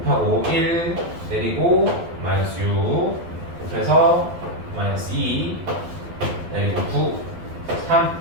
1 내리고 마이너스 6 곱해서 마이너스 2 내리고 9 3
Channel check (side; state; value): left; late; 12 ms